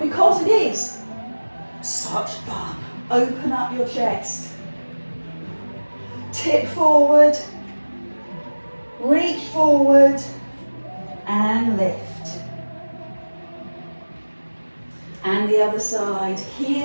because it is such fun. Open up your chest. Tip forward, reach forward, and lift. And the other side,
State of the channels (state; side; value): inverted; both; correlation -1.00